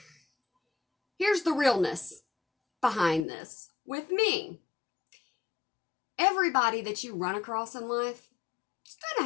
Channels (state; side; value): drops out; right; at 3.2 s